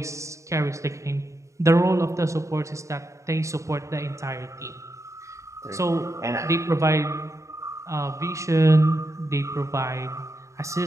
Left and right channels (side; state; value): left; late; 0.15 ms